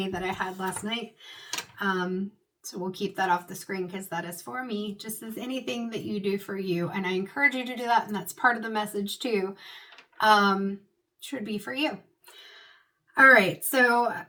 that I had last night. So we'll keep that off the screen because that is for me, just as anything that you do for you. And I encourage you to do that, and that's part of the message too, should be for you. All right, so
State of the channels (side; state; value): both; identical; correlation 1.00